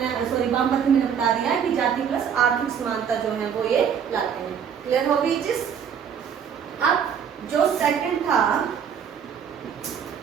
वामपंथी मैंने बता दिया है कि जाति प्लस आर्थिक समानता जो है वो ये लाते हैं। क्लियर हो गई चीज। अब जो सेकंड था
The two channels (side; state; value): left; quieter; 7.7 dB